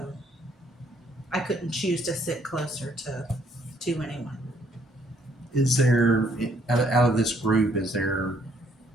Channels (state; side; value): normal; both; correlation 0.67